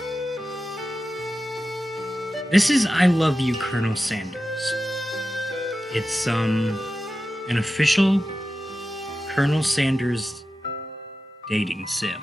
This is I Love You, Colonel Sanders. It's an official Colonel Sanders dating sim.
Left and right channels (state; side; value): normal; both; correlation 0.93